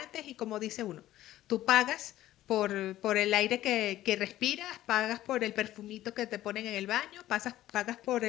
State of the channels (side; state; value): right; quieter; 14.3 dB